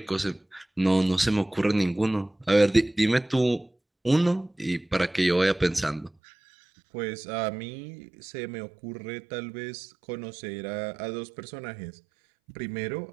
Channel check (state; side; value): drops out; left; at 6.1 s